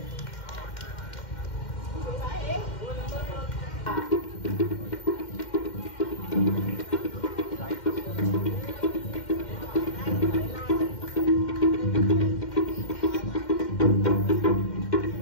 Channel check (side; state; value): right; late; 2.1 ms